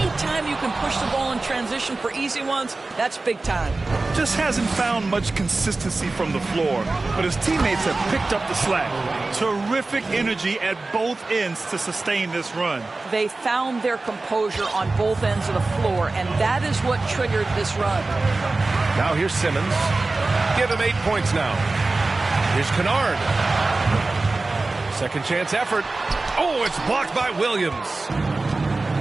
you can push the ball in transition for easy ones, that's big time. Just hasn't found much consistency from the floor, but his teammates have picked up the slack. Terrific energy at both ends to sustain this run. They found their composure on both ends of the floor, and that is what triggered this run. Now here's Simmons. Give him 8 points now. Here's Kennard. Second chance effort. Oh, it's blocked by Williams.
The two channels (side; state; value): left; quieter; 3.4 dB